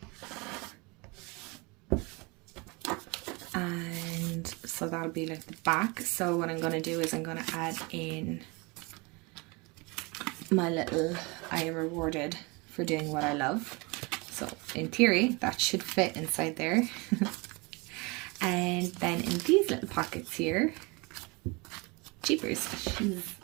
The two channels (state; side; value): quieter; left; 27.4 dB